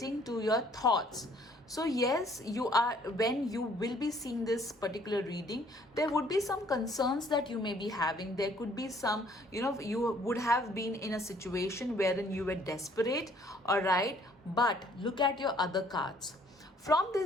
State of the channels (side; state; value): both; normal; correlation 0.60